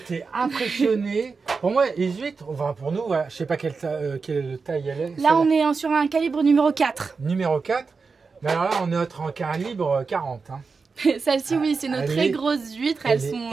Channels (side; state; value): left; quieter; 4.7 dB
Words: impressionné. Pour moi, les huîtres, enfin pour nous, je sais pas quelle taille elle est. Là, on est sur un calibre numéro 4. Numéro 4. Mais alors là, on est en calibre 40. Hein. Celle-ci, oui, c'est nos Elle très est- grosses huîtres. Elle